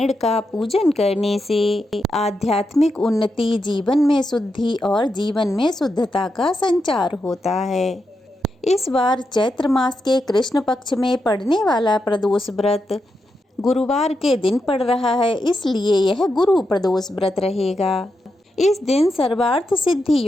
का पूजन करने से आध्यात्मिक उन्नति, जीवन में शुद्धि और जीवन में शुद्धता का संचार होता है। इस बार चैत्र मास के कृष्ण पक्ष में पड़ने वाला प्रदोष व्रत गुरुवार के दिन पड़ रहा है, इसलिए यह गुरु प्रदोष व्रत रहेगा। इस दिन सर्वार्थ सिद्धि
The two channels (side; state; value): both; normal; correlation 0.86